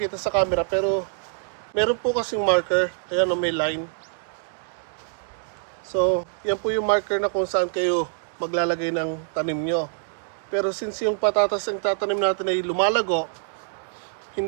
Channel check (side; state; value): left; silent; digital silence